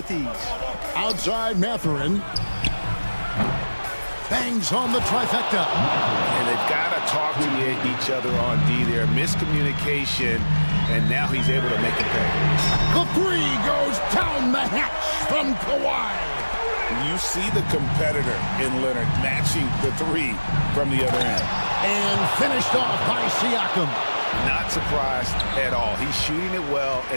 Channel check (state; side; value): inverted; both; correlation -1.00